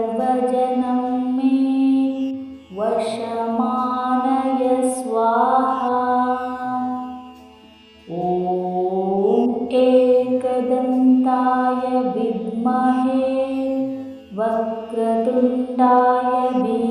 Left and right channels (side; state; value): both; identical; correlation 1.00